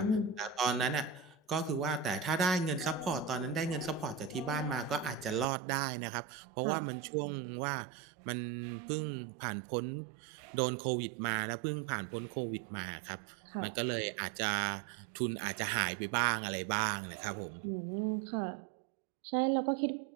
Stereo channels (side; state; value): left; drops out; at 5.5 s